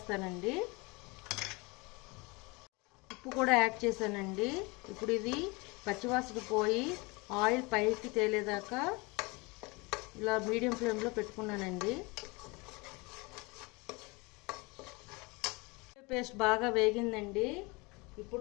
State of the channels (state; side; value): quieter; right; 26.6 dB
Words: ఉప్పు కూడా యాడ్ చేశానండి. ఇప్పుడు ఇది పచ్చివాసన పోయి ఆయిల్ పైకి తేలేదాకా ఇలా మీడియం ఫ్లేమ్లో పెట్టుకున్నానండి. పేస్ట్ బాగా వేగిందండి.